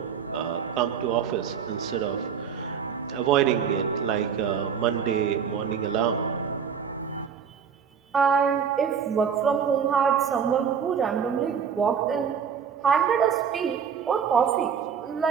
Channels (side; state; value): left; quieter; 7.2 dB